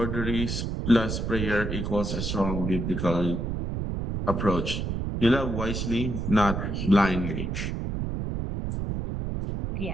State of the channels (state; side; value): noise; right; rumble, 3 dB below the sound